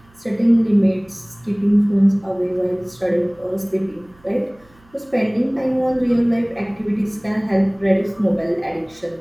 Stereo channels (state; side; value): noise; right; hum, 30 dB below the sound